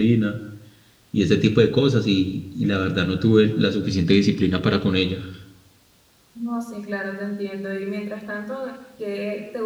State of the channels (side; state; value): both; identical; correlation 1.00